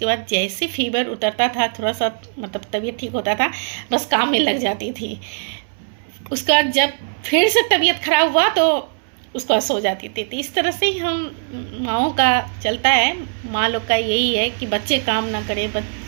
बाद जैसे फीवर उतरता था, थोड़ा सा मतलब तबीयत ठीक होता था, बस काम में लग जाती थी। उसके बाद जब फिर से तबीयत खराब हुआ तो उसको सो जाती थी। तो इस तरह से ही हम माँओं का चलता है, माँ लोग का यही है कि बच्चे काम ना करें,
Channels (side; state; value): left; silent; 61 dB below the other